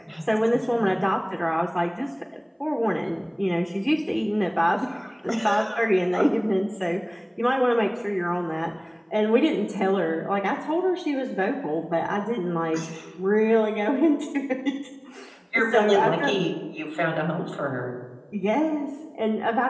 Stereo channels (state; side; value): identical; both; correlation 1.00